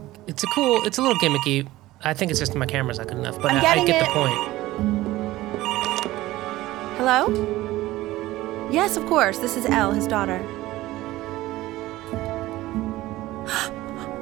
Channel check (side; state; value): left; quieter; 17.0 dB